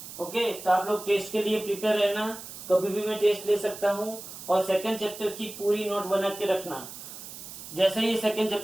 ओके, तो आप लोग टेस्ट के लिए प्रिपेयर रहना, कभी भी मैं टेस्ट ले सकता हूँ और सेकंड चैप्टर की पूरी नोट बना के रखना। जैसे ही सेकंड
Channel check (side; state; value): right; noise; hiss, 12 dB below the sound